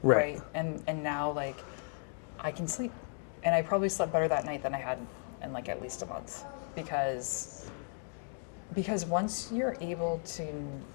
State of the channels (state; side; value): silent; right; 54 dB below the other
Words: Right. right? And now like I can sleep, and I probably slept better that night than I had in like at least a month, because once you're able to